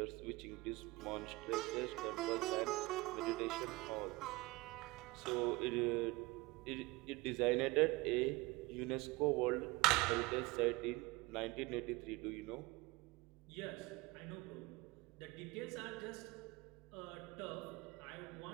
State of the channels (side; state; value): left; quieter; 22.4 dB